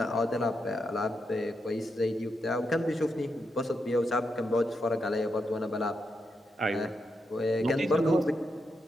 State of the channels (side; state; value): both; normal; correlation 0.84